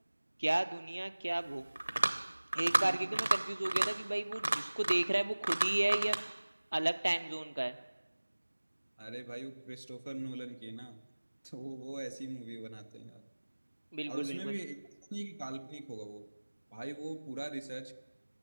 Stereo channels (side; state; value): both; inverted; correlation -1.00